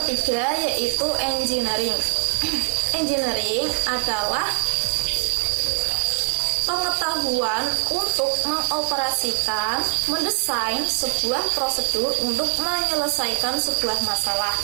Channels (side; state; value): left; quieter; 39.6 dB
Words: ketiga yaitu engineering. Engineering adalah pengetahuan untuk mengoperasikan, mendesain sebuah prosedur untuk menyelesaikan sebuah masalah.